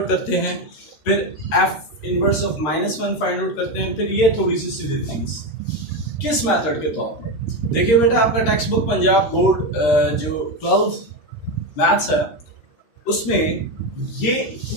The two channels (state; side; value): late; right; 13 ms